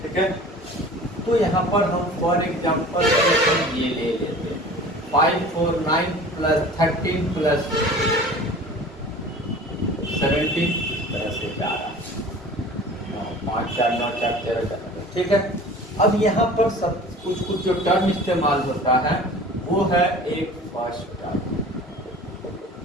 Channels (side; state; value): both; normal; correlation 0.42